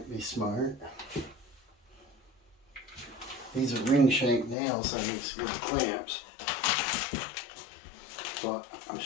be smart. These are ring shank nails, so it makes good clamps. But I'm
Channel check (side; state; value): right; drops out; at 4.5 s